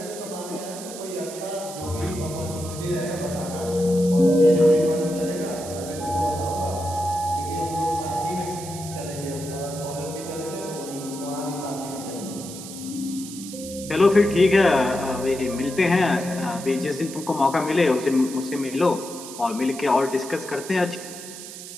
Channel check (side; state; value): right; noise; hiss, 12 dB below the sound